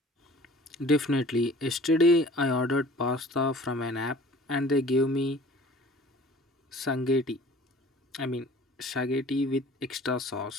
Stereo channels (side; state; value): both; normal; correlation 0.48